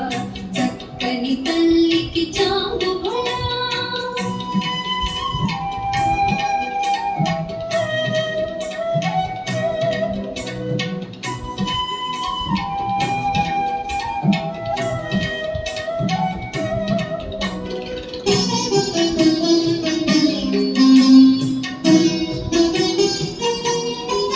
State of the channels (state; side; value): identical; both; correlation 1.00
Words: చక్కని తల్లికి చాంగుబళ